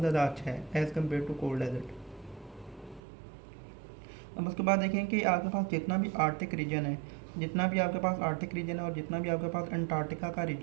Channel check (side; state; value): left; drops out; at 3.0 s